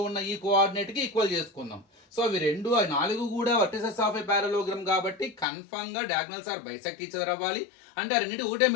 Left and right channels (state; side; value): drops out; right; at 5.5 s